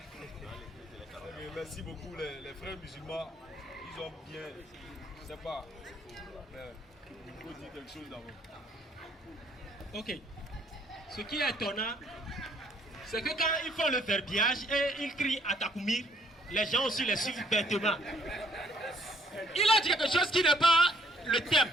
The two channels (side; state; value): both; normal; correlation 0.64